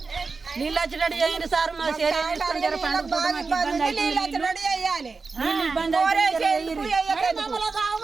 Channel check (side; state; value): left; quieter; 4.3 dB